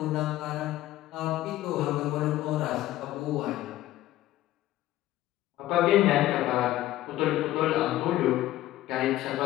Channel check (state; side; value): quieter; right; 15.0 dB